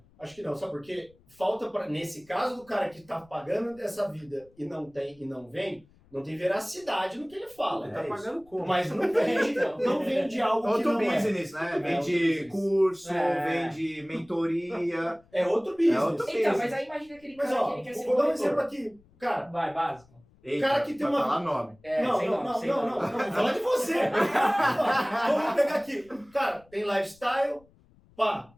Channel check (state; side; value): noise; left; rumble, 30 dB below the sound